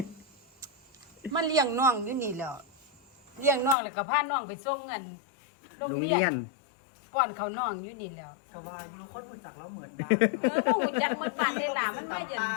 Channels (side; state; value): right; drops out; at 3.8 s